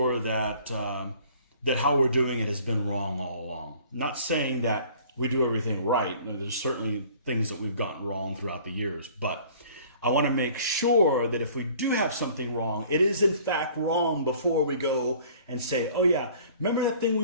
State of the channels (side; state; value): both; inverted; correlation -0.52